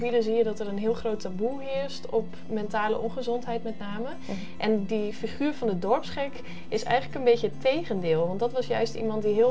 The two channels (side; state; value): both; identical; correlation 1.00